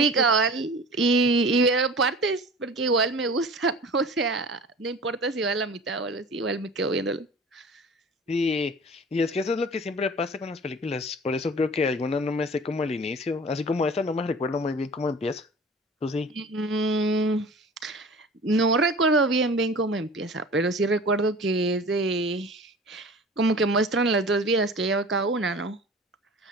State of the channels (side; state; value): both; normal; correlation 0.41